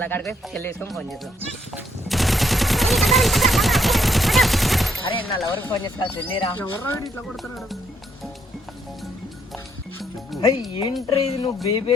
కాడికి చెల్లి వేసుకొని ఫోన్ చేస్తాం. అరే నా లవర్కి ఫోన్ చేస్తా, చెల్లిరా. ఏంట్రీ ఇది, నువ్వు బేబీ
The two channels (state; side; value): normal; both; correlation 0.72